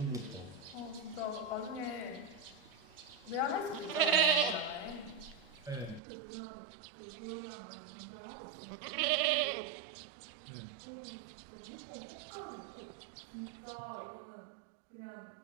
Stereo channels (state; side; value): drops out; left; at 6.0 s